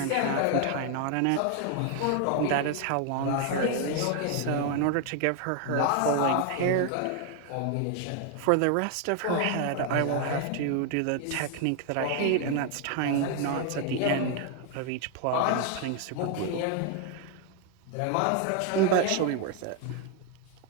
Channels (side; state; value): both; different; correlation 0.01